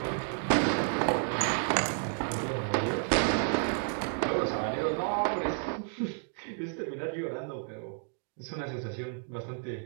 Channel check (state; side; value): silent; left; 55 dB below the other